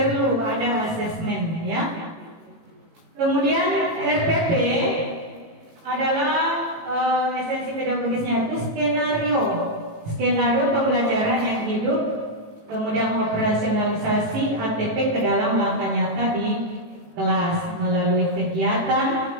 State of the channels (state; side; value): late; left; 18 ms